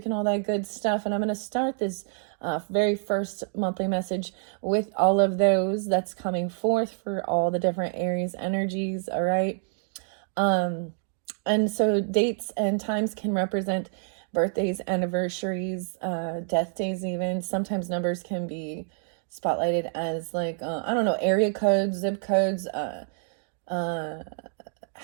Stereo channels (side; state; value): left; silent; digital silence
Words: and all that good stuff. And I'm going to start this very first monthly message with all of those that's coming forth for all the different Aries energies. All right. And so dates and times can represent birthdays, anniversaries, death days even. Sometimes numbers can be spotlighted as like, I don't know, area codes, zip codes,